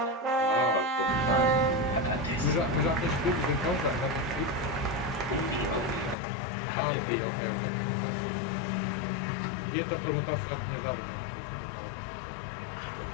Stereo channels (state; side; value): drops out; right; at 6.2 s